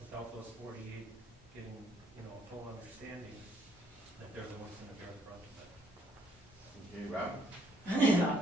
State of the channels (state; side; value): normal; both; correlation 0.67